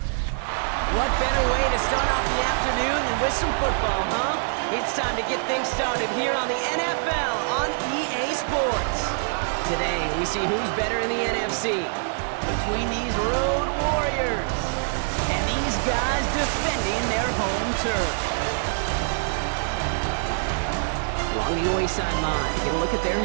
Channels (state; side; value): silent; left; 62 dB below the other